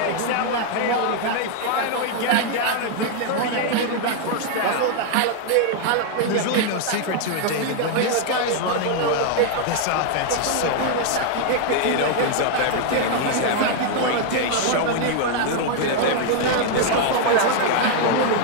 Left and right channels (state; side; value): different; both; correlation 0.00